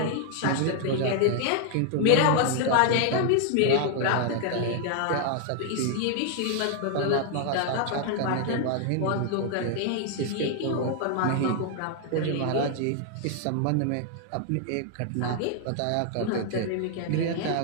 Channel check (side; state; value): both; different; correlation 0.00